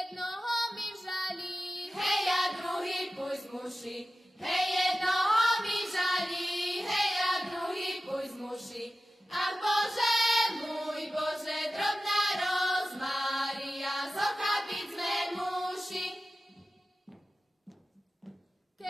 mi žalí, Hej a druhý púšť muši, hej jednoho mi žalí, hej a druhý púšť muši. Ach Bože, môj Bože, drobná rozmária, zochapiť sme muši.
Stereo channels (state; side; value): normal; both; correlation 0.95